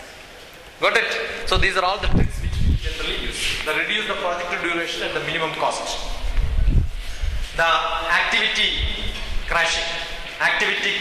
Got it? So these are all the tricks which we generally use. The reduce the project duration at the minimum cost. The activity crashing. Activity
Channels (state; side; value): identical; both; correlation 1.00